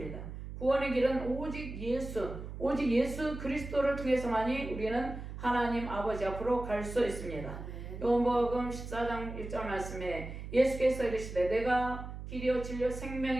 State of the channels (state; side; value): noise; right; hum, 9 dB below the sound